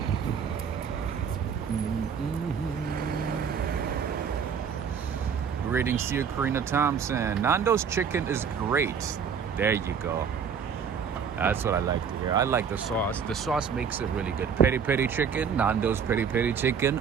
Greetings to you, Karina Thompson. Nando's chicken is great. There you go. That's what I like to hear. I like the sauce. The sauce makes it really good. Peri peri chicken. Nando's peri peri chicken.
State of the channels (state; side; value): quieter; left; 6.9 dB